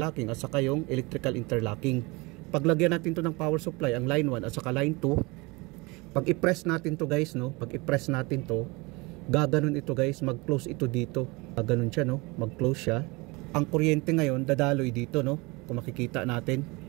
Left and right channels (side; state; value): left; quieter; 25.4 dB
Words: at saka yung electrical interlocking. Paglagyan natin to ng power supply, ang line 1 at saka line 2, pag i-press natin to guys, no, pag i-press natin to, gaganon ito guys, mag-close ito dito, gaganon siya, no, mag-close siya. Ang kuryente ngayon dadaloy dito, no, kung makikita natin,